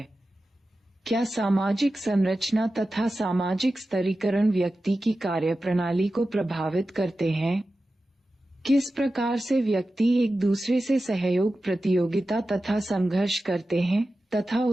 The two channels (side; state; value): both; normal; correlation 0.93